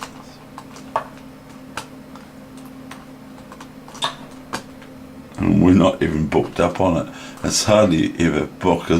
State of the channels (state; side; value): identical; both; correlation 1.00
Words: And we're not even booked up on it. It's hardly ever book,